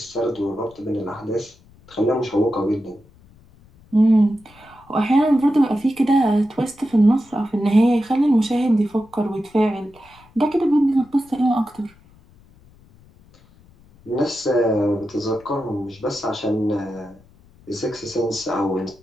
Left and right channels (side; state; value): left; noise; rumble, 27 dB below the sound